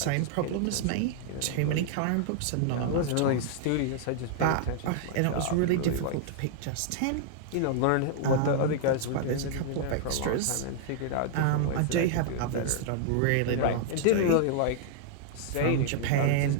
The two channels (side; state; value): both; different; correlation -0.01